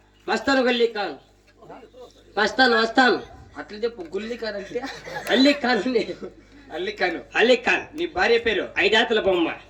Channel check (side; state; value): both; identical; correlation 1.00